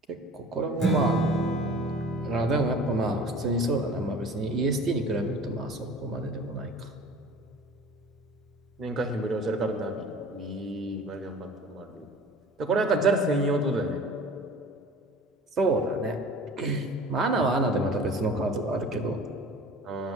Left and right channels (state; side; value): normal; both; correlation 0.43